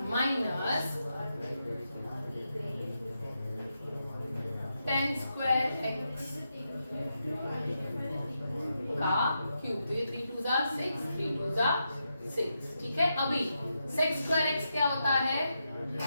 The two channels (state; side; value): inverted; both; correlation -0.86